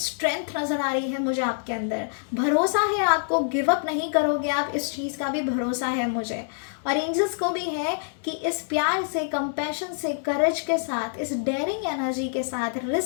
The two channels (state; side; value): silent; right; digital silence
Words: नज़र आ रही है मुझे आपके अंदर, भरोसा है आपको, गिव अप नहीं करोगे आप, इस चीज़ का भी भरोसा है मुझे। और एंजल्स को भी है कि इस प्यार से, कंपैशन से, करेज के साथ, इस डेयरिंग एनर्जी के साथ,